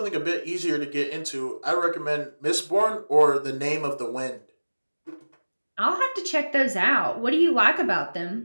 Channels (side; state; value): both; inverted; correlation -1.00